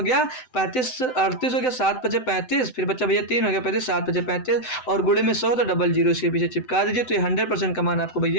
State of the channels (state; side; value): late; right; 7.9 ms